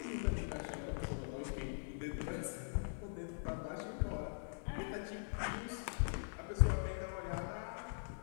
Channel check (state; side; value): silent; right; digital silence